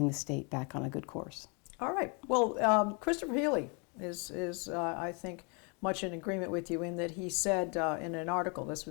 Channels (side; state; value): right; quieter; 34.2 dB